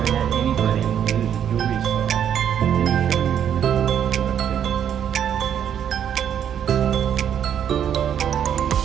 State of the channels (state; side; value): quieter; left; 9.1 dB